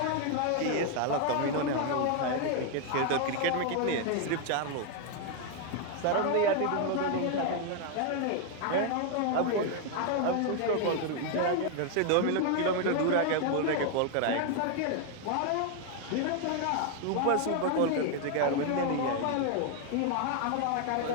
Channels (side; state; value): both; different; correlation 0.00